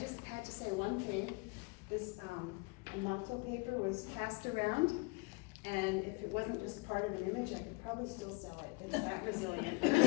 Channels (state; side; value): quieter; right; 27.5 dB